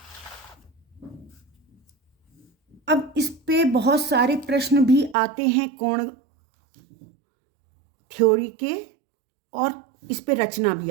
अब इस पे बहुत सारे प्रश्न भी आते हैं कोण थ्योरी के, और इस पे रचना भी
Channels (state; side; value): drops out; left; at 5.2 s